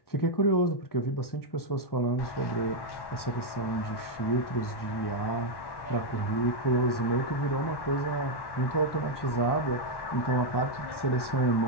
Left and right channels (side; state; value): right; late; 1.1 ms